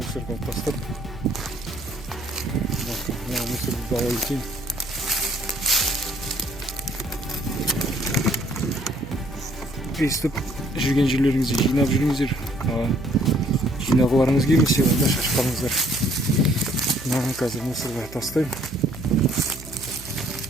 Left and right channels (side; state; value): right; noise; hum, 15 dB below the sound